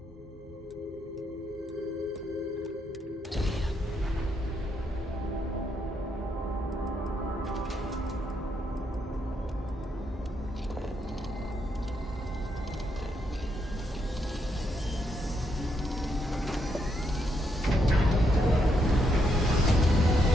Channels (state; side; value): normal; both; correlation 0.78